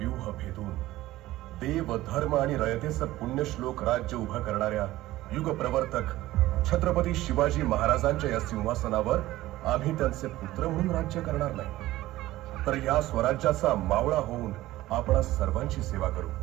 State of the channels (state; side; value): quieter; left; 16.4 dB